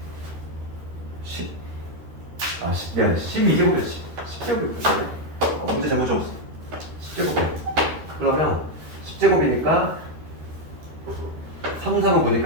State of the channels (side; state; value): left; late; 13 ms